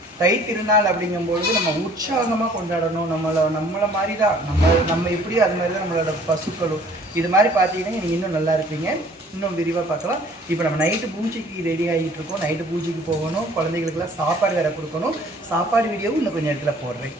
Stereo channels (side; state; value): both; normal; correlation 0.55